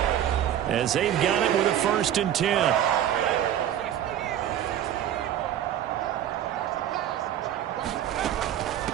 as they've got it with a 1st and 10.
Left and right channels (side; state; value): left; quieter; 10.9 dB